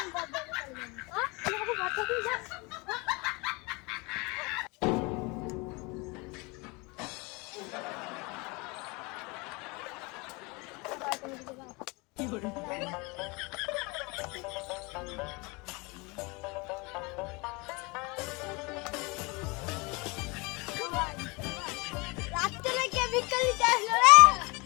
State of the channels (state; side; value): quieter; right; 27.2 dB